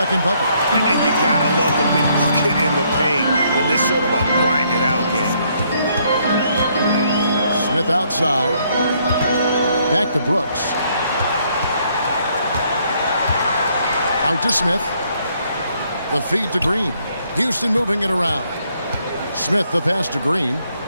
bucket. And you gotta love the big bucket in the paint in this sort of a grinded out game. Smith outside. Back to Brooks. Out to Smith. The feed to Green. Houston moving it around. Smith the pass to Green.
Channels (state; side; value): inverted; both; correlation -0.70